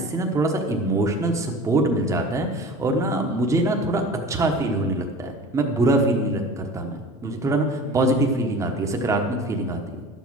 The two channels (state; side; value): normal; both; correlation 0.39